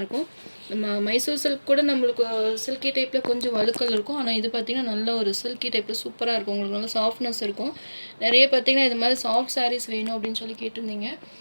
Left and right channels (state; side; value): inverted; both; correlation -1.00